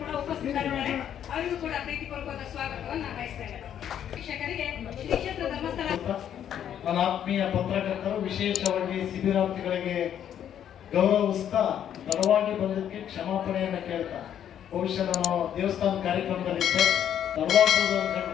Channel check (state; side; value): quieter; right; 9.8 dB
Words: ಉಪಸ್ಥಿತರಿದ್ದಾರೆ. ಅವರಿಗೂ ಕೂಡ ಪ್ರೀತಿಪೂರ್ವಕವಾದ ಸ್ವಾಗತವನ್ನು ನಾನು ಬಯಸ್ತೇನೆ. ಶಿಕ್ಷಕರಿಗೆ ಶ್ರೀ ಕ್ಷೇತ್ರ ಧರ್ಮಸ್ಥಳ ನನ್ನ ಆತ್ಮೀಯ ಪತ್ರಕರ್ತರು ವಿಶೇಷವಾಗಿ ಶಿಬಿರಾರ್ಥಿಗಳಿಗೆ ಗೌರವಿಸ್ತಾ ತಡವಾಗಿ ಬಂದಕ್ಕೆ ಕ್ಷಮಾಪಣೆಯನ್ನು ಕೇಳ್ತಾ, ಬಹುಶಃ ನಾನು ದೇವಸ್ಥಾನ ಕಾರ್ಯಕ್ರಮದಲ್ಲಿದ್ದೆ, ತಡವಾಗ್ಬೋದು